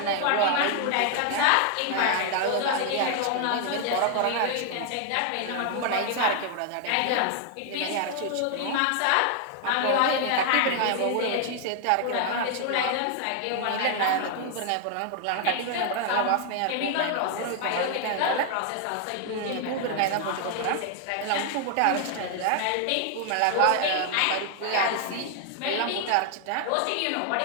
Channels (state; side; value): different; both; correlation 0.00